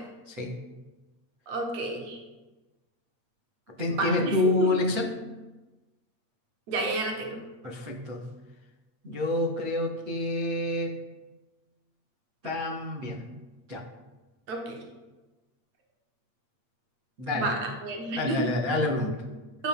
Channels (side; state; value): left; late; 8.5 ms